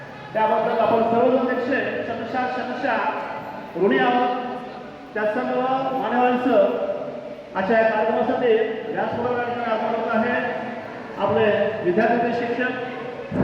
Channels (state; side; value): identical; both; correlation 1.00